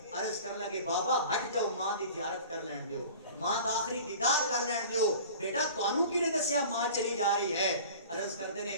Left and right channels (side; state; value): both; inverted; correlation -0.41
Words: عرض کر لگے بابا ہٹ جاؤ ماں دی زیارت کر لین دیو ماں دا آخری دیدار کر لین دیو بیٹا تانوں کی نے دسیا ماں چلی جا رہی ہے عرض کردے